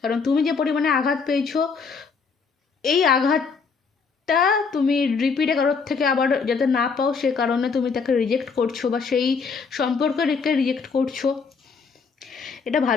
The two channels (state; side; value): quieter; right; 5.2 dB